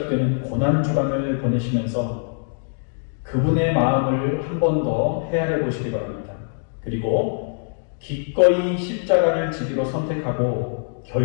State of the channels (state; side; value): silent; right; digital silence